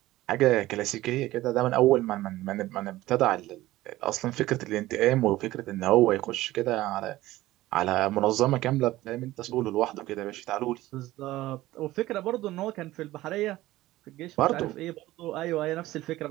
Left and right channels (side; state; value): left; quieter; 16.7 dB